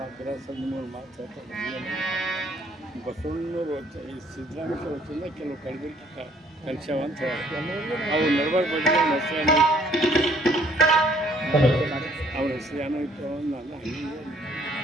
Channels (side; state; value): both; normal; correlation 0.62